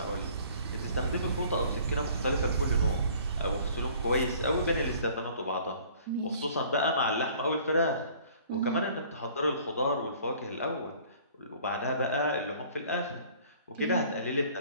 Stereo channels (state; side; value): inverted; both; correlation -0.53